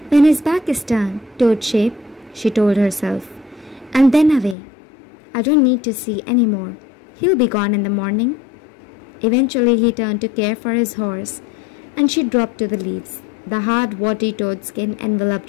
When his back is turned, toad shape, she told herself, and then away. I don't need to see any more. He'll be gone in the morning. Eventually he turned to care for his horse, and she dropped to the leaves. The hard, warty toad skin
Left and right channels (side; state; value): right; drops out; at 4.5 s